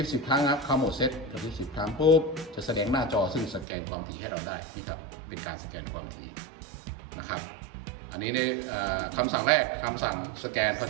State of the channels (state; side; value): drops out; left; at 3.7 s